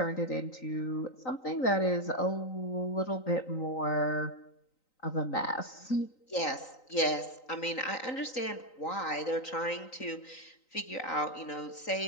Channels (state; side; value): late; right; 3.9 ms